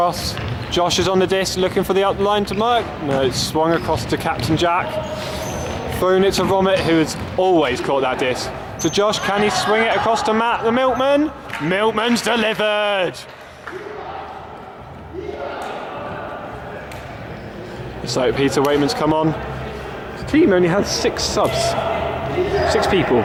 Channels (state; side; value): identical; both; correlation 1.00